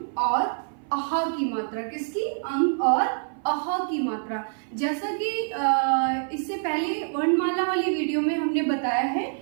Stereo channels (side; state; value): left; silent; 56 dB below the other